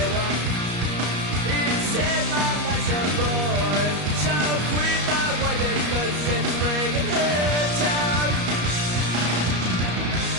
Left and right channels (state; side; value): late; left; 34 ms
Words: he said my life's a bore. So quit my wife because it's bringing her down.